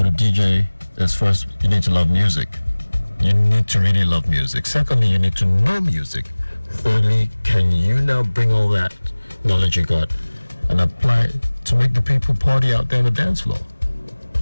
a DJ is first, you need to love music. You need to really love music. Secondly, you need to know music. Thirdly, can you now bring all that knowledge you got and apply it to make the people party out there on the dance floor?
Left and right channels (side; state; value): both; inverted; correlation -1.00